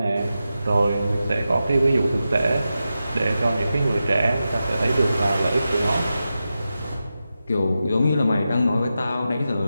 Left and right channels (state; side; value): inverted; both; correlation -0.91